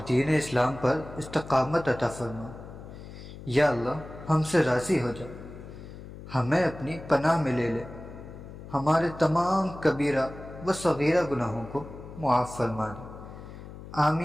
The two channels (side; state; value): left; noise; hum, 14 dB below the sound